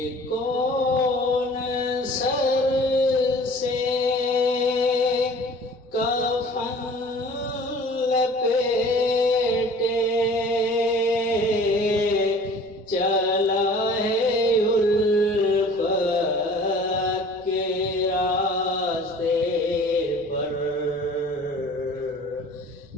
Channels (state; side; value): noise; right; rumble, 27 dB below the sound